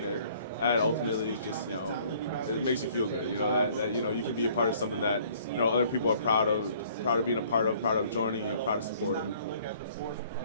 That ultimately is just, you know, it makes you feel good. You know, that you know, you can be a part of something that, you know, other people are proud of being a part of, proud of joining, and proud of supporting.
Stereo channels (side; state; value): both; inverted; correlation -0.57